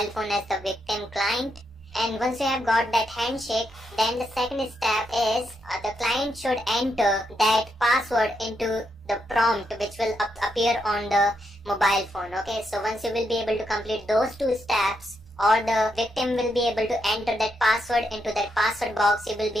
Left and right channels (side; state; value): both; normal; correlation 0.80